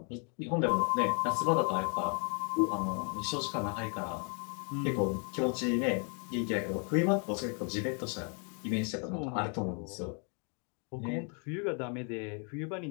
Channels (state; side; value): quieter; right; 38.7 dB